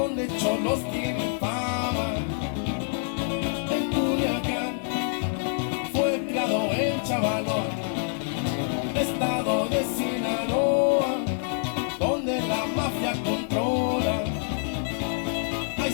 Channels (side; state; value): right; silent; digital silence